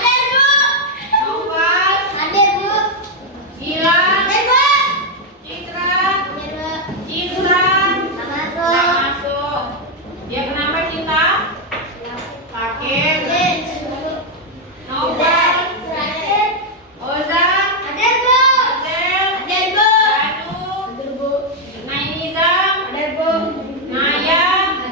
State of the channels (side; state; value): both; normal; correlation 0.01